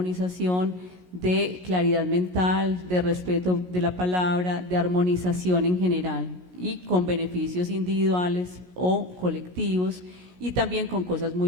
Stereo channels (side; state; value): left; late; 17 ms